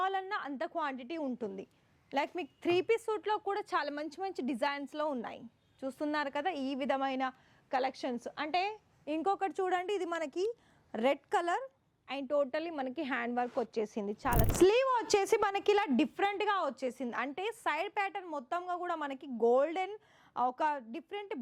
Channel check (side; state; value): both; identical; correlation 1.00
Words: అంత క్వాంటిటీ ఉంటుంది. లైక్ మీకు 3 పీస్ సూట్లో కూడా చాలా మంచి డిజైన్స్లో ఉన్నాయి. చూస్తున్నారు కదా ఈ విధమైన కలెక్షన్స్. అంటే ఇంకొకటి చూడండి, ఇది మనకి రెడ్ కలర్ అండ్ టోటలీ మనకి హ్యాండ్ వర్క్ వచ్చేసింది. చాలా స్లీవ్ వచ్చేసి మనకి ఇలా డిఫరెంట్గా వచ్చేసింది. అంటే సైడ్ ప్యాటర్న్ మొత్తంగా కూడా మనకి గోల్డెన్ ఒక డిఫరెంట్